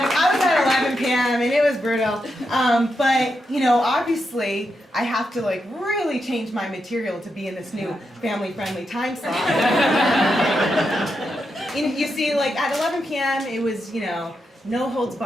I was at 11 p.m. and it was brutal. But, you know, obviously, I have to like really change my material to be in this new family-friendly time slot. You see, like at 11 p.m. it was, you know, no holds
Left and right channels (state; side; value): normal; both; correlation 0.85